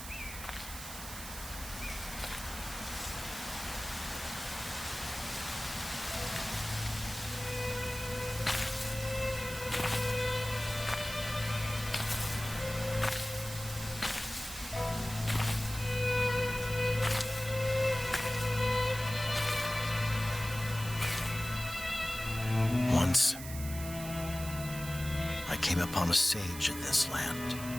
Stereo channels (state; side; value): noise; right; hiss, 10 dB below the sound